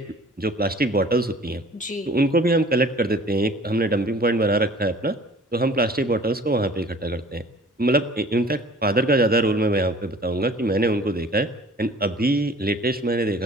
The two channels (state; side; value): normal; both; correlation 0.49